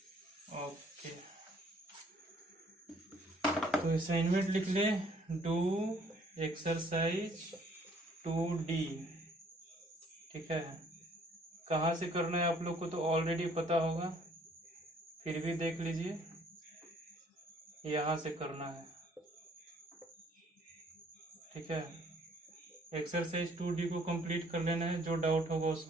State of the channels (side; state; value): both; normal; correlation 0.61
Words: ओके, तो असाइनमेंट लिख ले, डू एक्सरसाइज 2D, ठीक है। कहाँ से करना है आप लोग को तो ऑलरेडी पता होगा, फिर भी देख लीजिए, यहाँ से करना है, ठीक है। एक्सरसाइज 2D को कंप्लीट कर लेना है, जो डाउट होगा